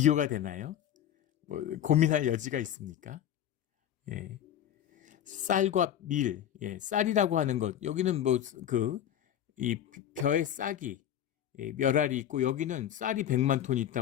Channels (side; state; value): right; quieter; 10.4 dB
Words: 되나요? 고민할 여지가 있습니까? 쌀과 밀, 쌀이라고 하는 것, 여기는 이 벼의 싹이 몇 알이 있고 여기는 쌀이 100만 톤이